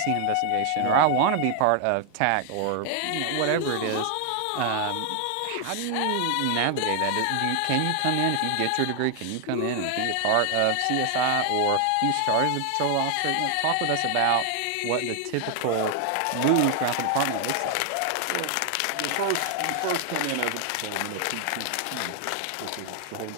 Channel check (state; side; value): different; both; correlation 0.00